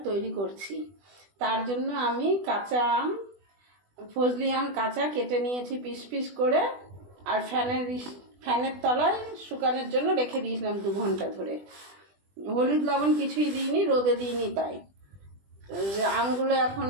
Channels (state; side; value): late; left; 20 ms